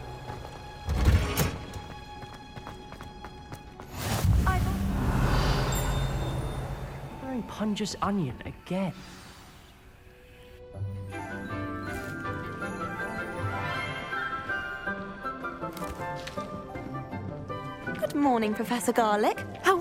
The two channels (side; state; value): both; identical; correlation 1.00